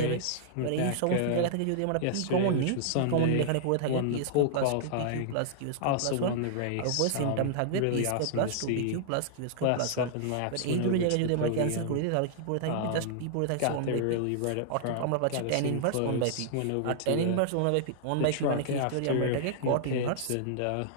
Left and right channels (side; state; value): both; different; correlation -0.01